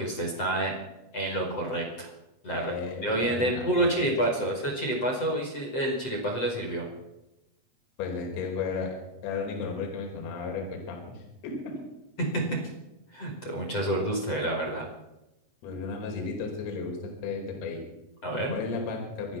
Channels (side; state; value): right; late; 7.7 ms